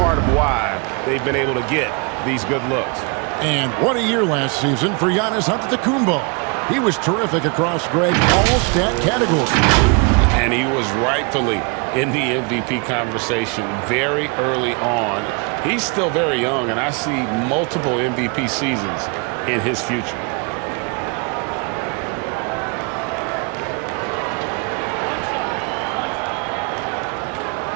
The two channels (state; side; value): quieter; left; 33.7 dB